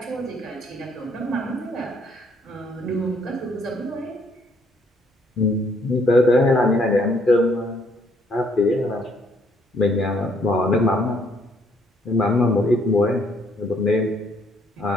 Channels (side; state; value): both; normal; correlation 0.67